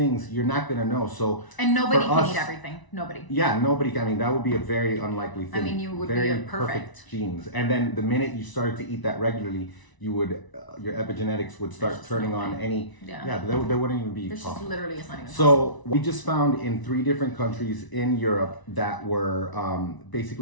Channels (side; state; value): right; late; 1.0 ms